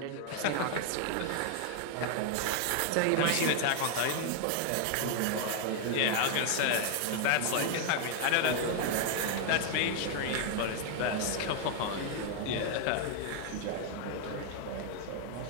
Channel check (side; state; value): both; different; correlation 0.00